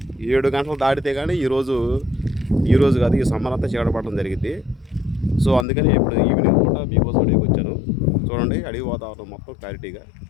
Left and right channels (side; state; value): right; drops out; at 5.7 s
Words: 7 గంటలు దాటితే కానీ ఈరోజు కాదు, ఈ సమ్మర్ అంతా చీకటి పడడం జరిగింది. సో అందుకని ఇప్పుడు ఈవినింగ్ పూట మీకోసం అడవికి వచ్చాను. చూడండి అడవి వాతావరణం మొత్తం క్లారిటీగా